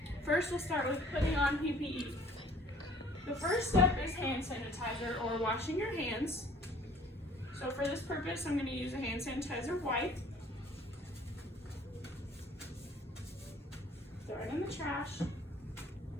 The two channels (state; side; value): normal; both; correlation 0.54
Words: First, we'll start with putting on PPE. The first step is hand sanitizer or washing your hands. So for this purpose, I'm going to use a hand sanitizer wipe. Throw it in the trash.